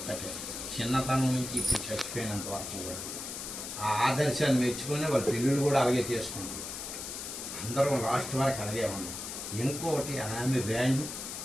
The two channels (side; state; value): left; noise; hiss, 7 dB below the sound